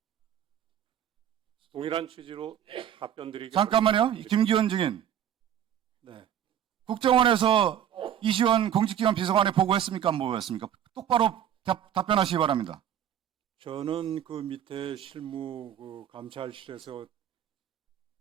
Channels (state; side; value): quieter; left; 10.0 dB